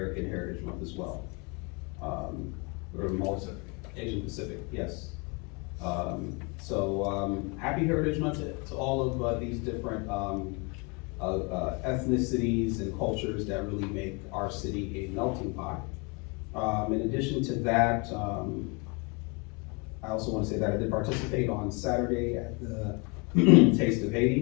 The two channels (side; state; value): right; quieter; 31.1 dB